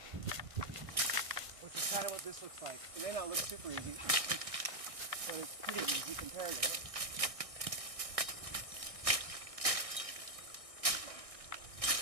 which is kind of what this looks like. It may not look super easy, but it's pretty easy compared to it.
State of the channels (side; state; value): left; late; 1.6 ms